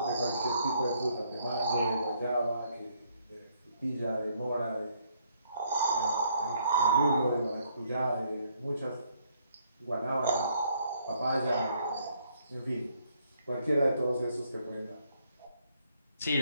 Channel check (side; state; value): both; inverted; correlation -0.69